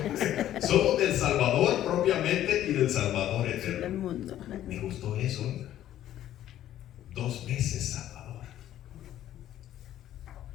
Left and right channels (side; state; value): right; quieter; 12.3 dB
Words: somos del Salvador propiamente y del Salvador eterno. Me gustó eso. 2 veces Salvador.